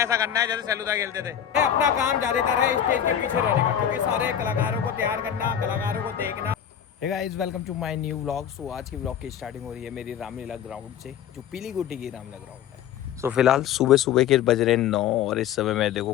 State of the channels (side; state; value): right; quieter; 9.6 dB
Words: करना है जैसे सेलूदा खेलते थे। अपना काम ज्यादातर है स्टेज के पीछे रहने का, क्योंकि सारे कलाकारों को तैयार करना, कलाकारों को देखना। Hey guys, welcome to my new vlog. So आज की व्लॉग की स्टार्टिंग हो रही है मेरी रामलीला ग्राउंड से, जो पीली गुटी की रामलीला ग्राउंड है। सो फिलहाल सुबह सुबह के बज रहे 9 और इस समय में देखो